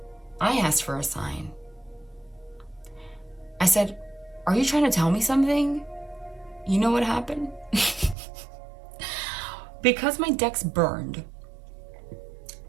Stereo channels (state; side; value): drops out; left; at 8.2 s